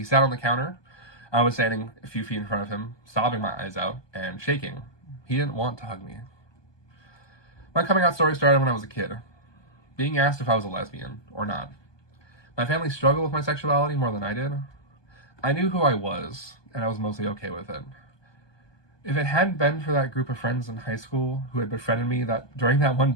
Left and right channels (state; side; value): late; right; 1.2 ms